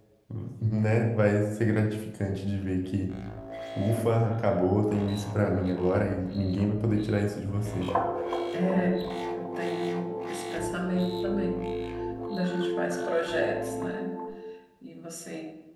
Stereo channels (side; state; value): both; identical; correlation 1.00